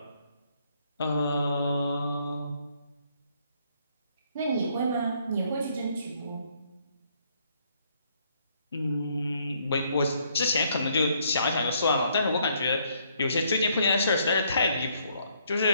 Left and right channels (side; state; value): both; inverted; correlation -0.69